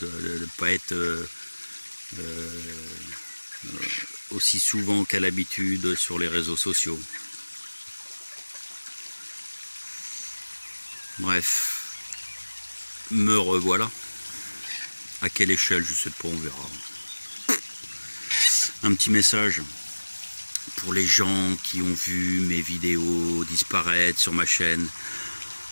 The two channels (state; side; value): inverted; both; correlation -1.00